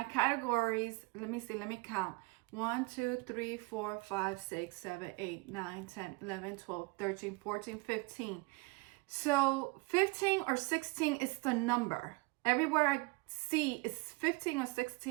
categories, let me see, let me count. 1, 2, 3, 4, 5, 6, 7, 8, 9, 10, 11, 12, 13, 14, 15. So 15 or 16 is the number. Everywhere I see is 15 or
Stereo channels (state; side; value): quieter; left; 26.6 dB